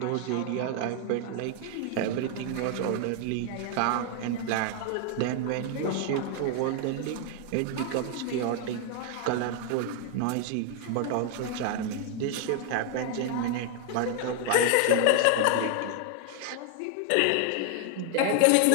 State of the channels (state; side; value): different; both; correlation 0.00